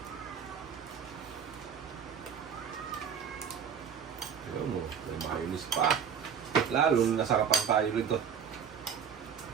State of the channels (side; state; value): left; quieter; 7.5 dB